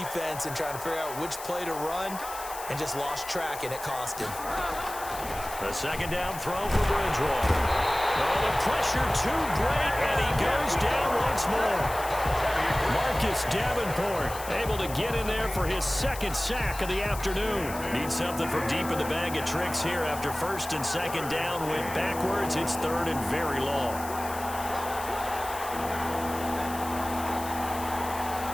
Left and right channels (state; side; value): noise; left; hiss, 12 dB below the sound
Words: and trying to figure out which play to run and just lost track, and it cost him. The 2nd down throw for Bridgewater. Oh, the pressure too great, and he goes down once more. Marcus Davenport able to get in there for his 2nd sack of the afternoon. Needs something from deep in the bag of tricks here after 1st and 2nd down. Went backwards. It's 3rd and very long.